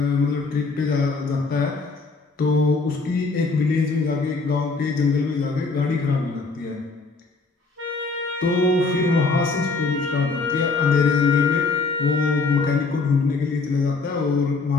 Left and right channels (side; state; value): right; quieter; 4.0 dB